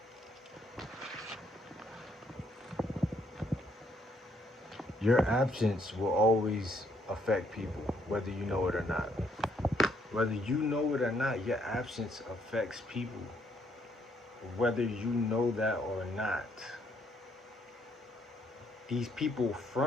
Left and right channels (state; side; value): normal; both; correlation 0.70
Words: your absence will always affect people, whether you know it or not. Whether you know it or not, your absence affects people, whether you know that or not. These people